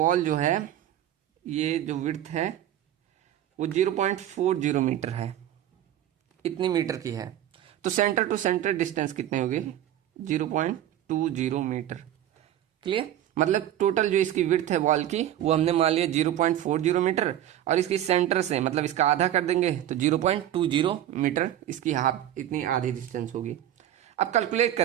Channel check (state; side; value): quieter; left; 12.0 dB